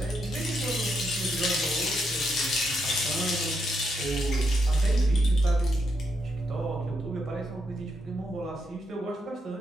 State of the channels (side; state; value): both; normal; correlation 0.80